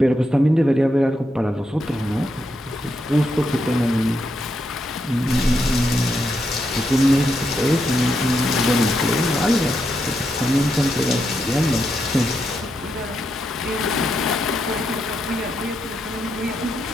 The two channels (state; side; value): normal; both; correlation 0.82